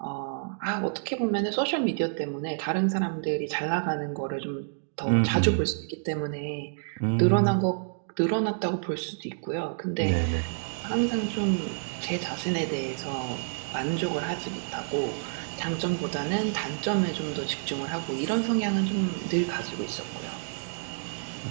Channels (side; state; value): left; silent; digital silence